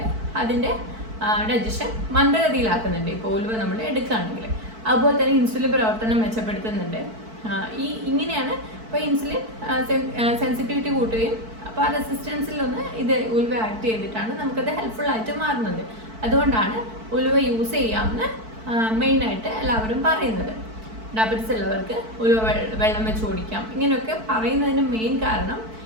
അതിൻ്റെ ഡൈജഷൻ മന്ദഗതിയിലാക്കുന്നുണ്ട് ഇപ്പോൾ ഉലുവ നമ്മൾ എടുക്കുകയാണെങ്കിൽ. അതുപോലെ തന്നെ ഇൻസുലിൻ പ്രവർത്തനം മെച്ചപ്പെടുത്തുന്നുണ്ട്. ഇങ്ങനെയാണ് ഇപ്പോൾ ഇൻസുലിൻ സെൻസിറ്റിവിറ്റി കൂട്ടുകയും അപ്പോൾ ആ റെസിസ്റ്റൻസിലൊന്ന് ഇത് ഉലുവ ആക്ട് ചെയ്തിട്ടാണ് നമുക്കത് ഹെൽപ്ഫുൾ ആയിട്ട് മാറുന്നത്. അതുകൊണ്ടാണ് ഉലുവ യൂസ് ചെയ്യാമെന്ന് മെയിനായിട്ട് എല്ലാവരും പറയുന്നത്. ഡയബറ്റിസ് ഉള്ളവർക്ക് ഉലുവ വെള്ളം വെച്ച് കുടിക്കാം, ഇങ്ങനെയൊക്കെ പറയുന്നതിന് മെയിൻ കാരണം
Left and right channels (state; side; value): late; left; 4.5 ms